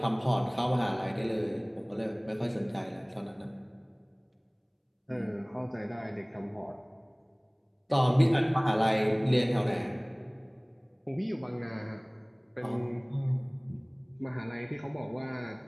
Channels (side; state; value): both; identical; correlation 1.00